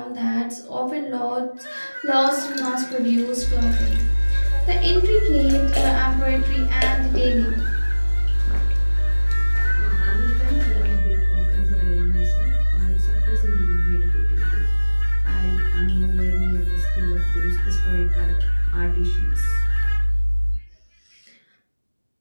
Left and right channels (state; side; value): inverted; both; correlation -1.00